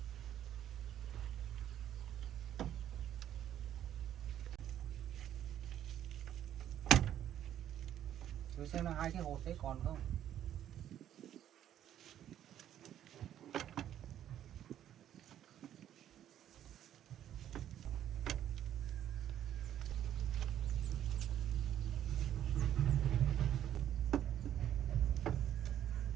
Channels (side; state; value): left; quieter; 11.0 dB